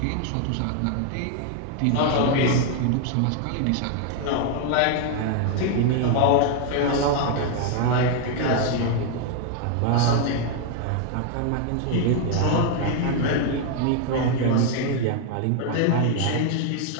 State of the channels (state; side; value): different; both; correlation 0.00